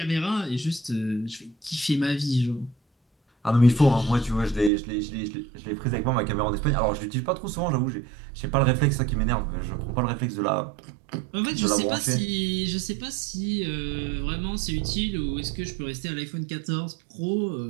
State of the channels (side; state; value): left; drops out; at 4.7 s